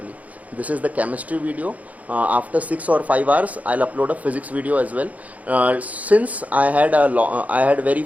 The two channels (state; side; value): late; left; 0.072 ms